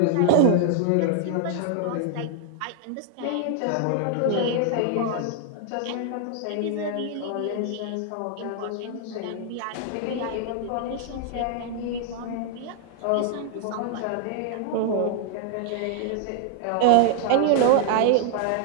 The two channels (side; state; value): both; different; correlation 0.00